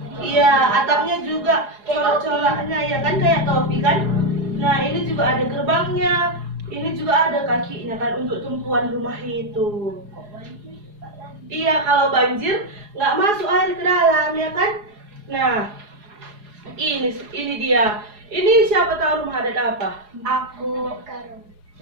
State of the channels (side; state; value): left; late; 4.8 ms